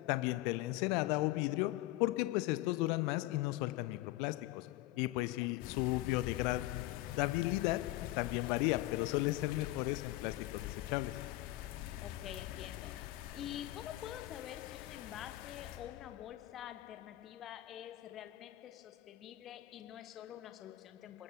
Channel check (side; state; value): right; quieter; 17.7 dB